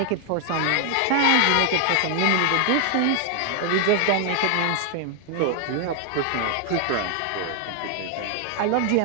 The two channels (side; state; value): both; different; correlation 0.00